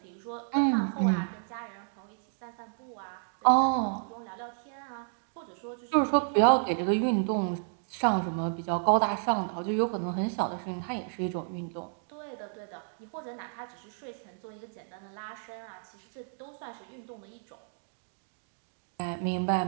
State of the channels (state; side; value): silent; left; digital silence